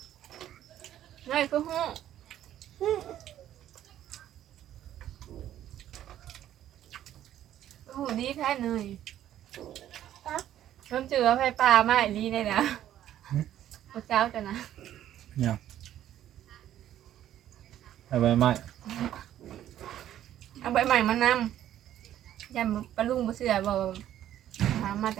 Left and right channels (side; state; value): left; quieter; 11.8 dB